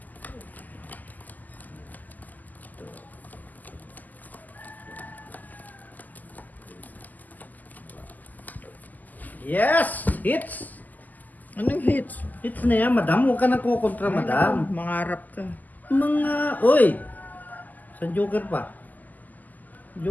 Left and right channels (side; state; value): right; late; 0.082 ms